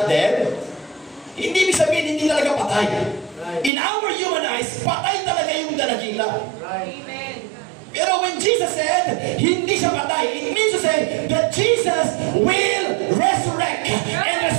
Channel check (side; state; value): left; drops out; at 3.7 s